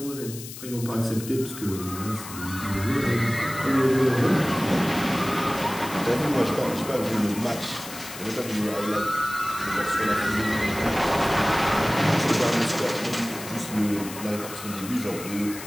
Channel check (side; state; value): left; noise; hiss, 12 dB below the sound